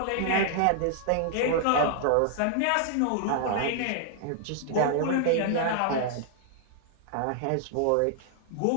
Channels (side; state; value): both; different; correlation 0.00